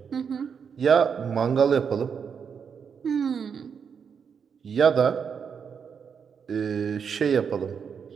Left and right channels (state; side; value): quieter; left; 6.7 dB